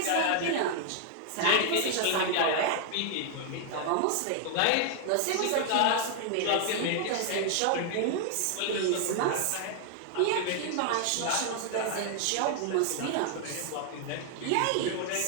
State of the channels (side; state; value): both; different; correlation 0.00